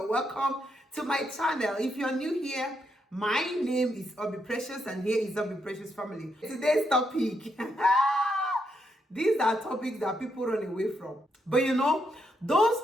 welcome to my channel. If you're new here, my name is Obi Precious and here is Obi Precious family. Today's topic, these are topics that people run away from. But you know, those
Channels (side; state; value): both; normal; correlation 0.79